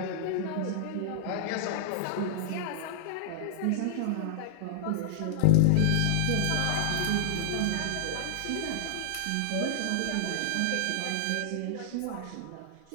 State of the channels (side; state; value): both; different; correlation -0.01